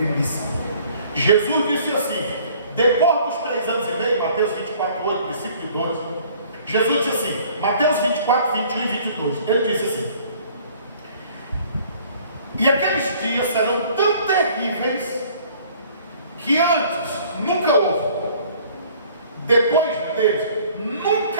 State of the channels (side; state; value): both; inverted; correlation -0.55